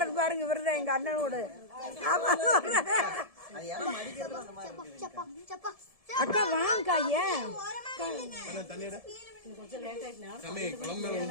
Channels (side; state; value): left; late; 1.7 ms